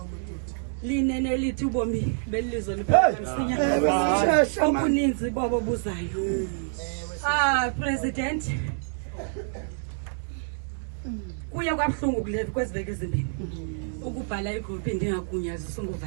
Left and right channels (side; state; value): left; silent; digital silence